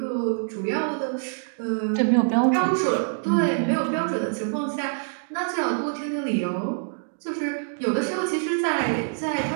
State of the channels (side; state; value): left; silent; digital silence